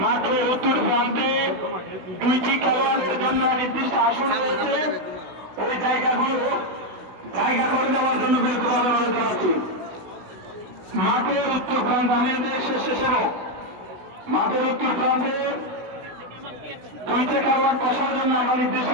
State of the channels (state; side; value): late; left; 16 ms